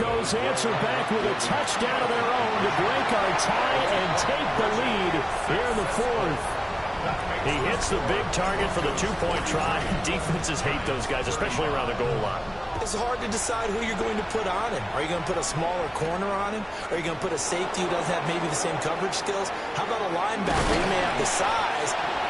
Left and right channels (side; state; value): both; identical; correlation 1.00